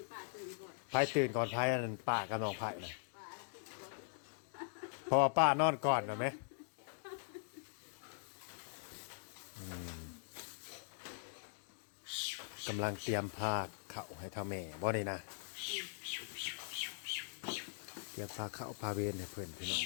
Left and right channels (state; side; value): silent; right; digital silence